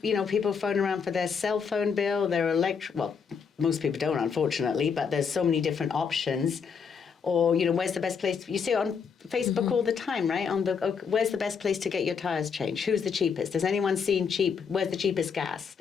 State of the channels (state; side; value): quieter; right; 6.2 dB